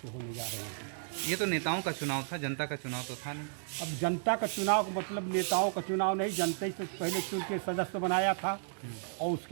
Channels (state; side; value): silent; left; digital silence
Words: होने जा रहे हैं। ये तो नेताओं का चुनाव था, जनता का चुनाव तो था नहीं। अब जनता का चुनाव का मतलब नेताओं का चुनाव नहीं, जनता से पहले चुन के सदस्य बनाया था और